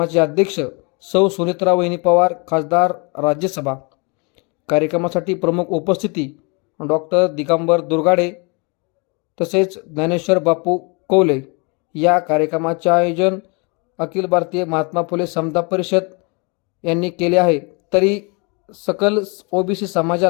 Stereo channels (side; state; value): right; quieter; 31.8 dB